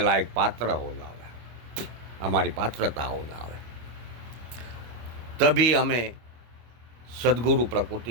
पात्र हो जावे, हमारी पात्रता हो जावे, तभी हमें सद्गुरु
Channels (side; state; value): left; late; 25 ms